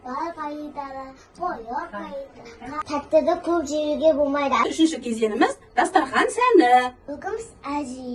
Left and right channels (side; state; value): both; identical; correlation 1.00